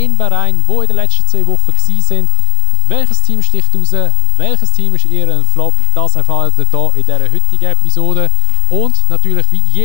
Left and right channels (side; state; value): both; different; correlation 0.00